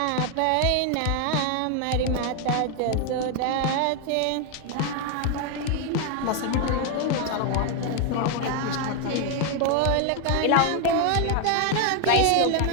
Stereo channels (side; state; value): both; different; correlation 0.01